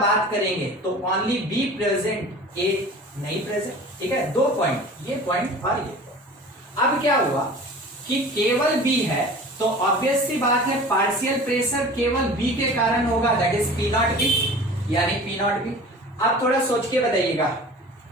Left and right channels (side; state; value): both; normal; correlation 0.40